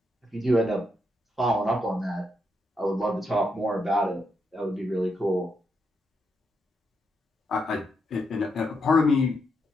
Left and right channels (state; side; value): normal; both; correlation 0.81